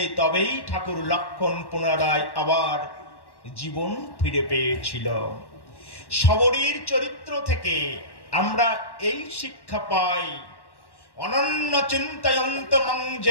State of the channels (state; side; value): late; right; 1.1 ms